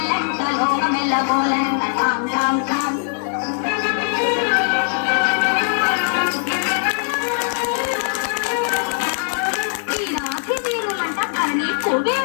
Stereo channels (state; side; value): silent; right; 65 dB below the other